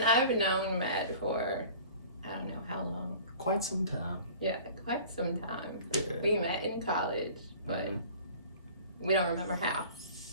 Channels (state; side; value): inverted; both; correlation -0.44